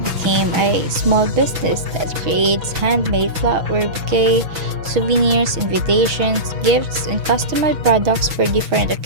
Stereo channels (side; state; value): left; late; 6.0 ms